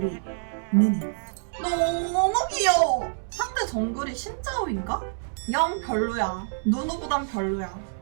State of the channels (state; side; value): silent; left; 61 dB below the other